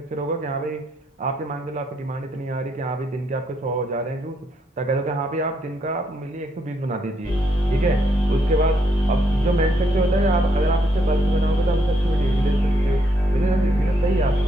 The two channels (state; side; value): normal; both; correlation 0.75